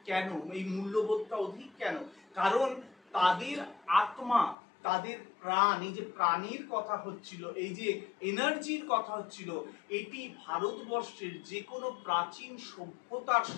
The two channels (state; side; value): drops out; right; at 4.5 s